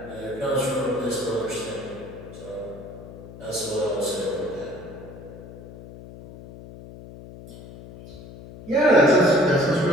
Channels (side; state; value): left; noise; hum, 16 dB below the sound